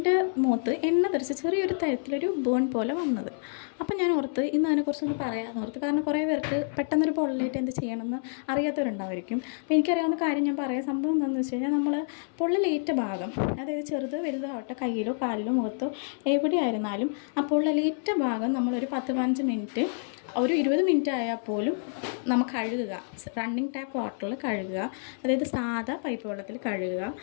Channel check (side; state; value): right; silent; 59 dB below the other